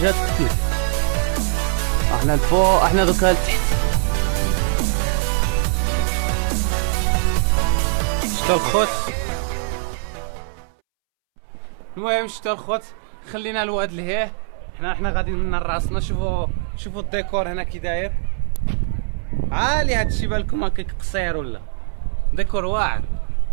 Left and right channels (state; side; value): silent; left; 65 dB below the other